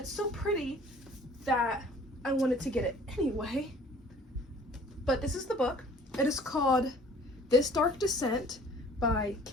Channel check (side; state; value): both; normal; correlation 0.52